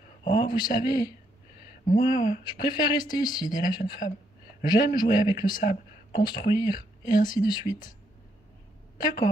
Oh, vous savez, moi, je préfère rester ici, dit la jeune femme. J'aime jouer avec le sable, construire, et ainsi de suite.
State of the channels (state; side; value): normal; both; correlation 0.75